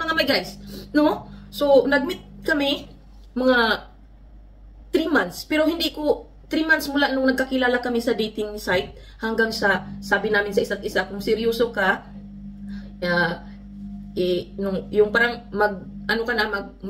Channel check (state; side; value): identical; both; correlation 1.00